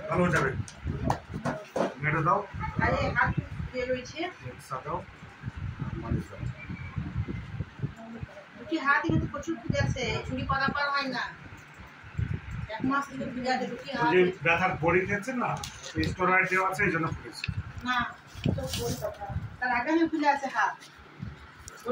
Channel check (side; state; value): both; identical; correlation 1.00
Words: ভালো যাবে। মেরে দাও। আরে হাত দিয়ে রয়েছে, দাও, মালিশ দাও। দুটি হাত কিন্তু প্রচুর ফুলে আছে, চুরি করা পার হয় না। 1 মাস থেকে ফুলে আছে দুটি হাত। যে ব্যথার বড়ি খেয়েছেন না, স্টেরয়েড দেওয়া আছে, এই জন্য ফুলেছে। না, তো বড়ি কথা। তার আগে আমি ফুলে আছে হাত,